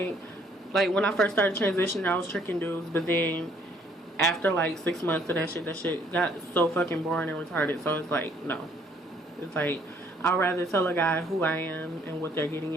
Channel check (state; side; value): normal; both; correlation 0.63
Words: when I first started transitioning, I was tricking dudes, but then after like 6 months of that shit got so fucking boring and retarded. So it's like, no. It's like, I'd rather tell a guy who I am and what they're getting